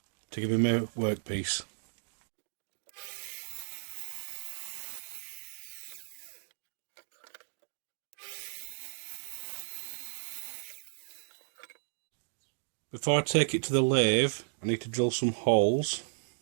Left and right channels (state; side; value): silent; left; digital silence